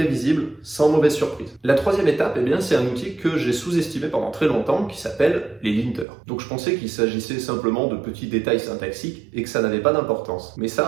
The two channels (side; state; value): left; drops out; at 6.1 s